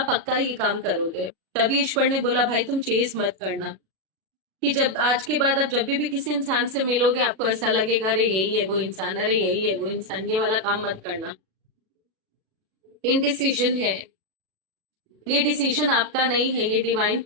पक्का ये काम करोगे। तभी ईश्वर ने बोला भाई तुम चेज मत करना, कि जब आज के बाद आप जब भी किसी इंसान से मिलोगे आपको ऐसा लगेगा अरे यही है वो इंसान, अरे यही है वो इंसान। ये वाला काम मत करना। इनडिसीजन है, ये डिसीजन आपका नहीं है, ये डिवाइन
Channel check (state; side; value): late; left; 37 ms